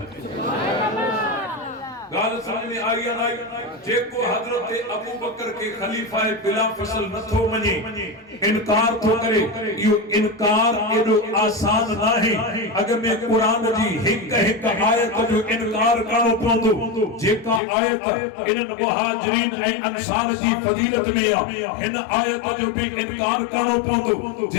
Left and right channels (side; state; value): right; drops out; at 17.6 s